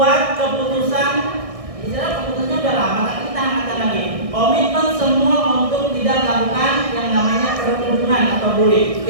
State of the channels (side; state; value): left; late; 1.6 ms